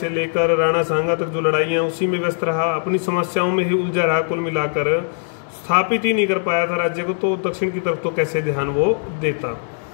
लेकर राणा सांगा तक जो लड़ाइयाँ, उसी में व्यस्त रहा, अपनी समस्याओं में ही उलझा रहा। कुल मिलाकर स्थापित ही नहीं कर पाया था राज्य को, तो दक्षिण की तरफ तो कैसे ध्यान वो देता।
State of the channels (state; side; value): silent; right; 66 dB below the other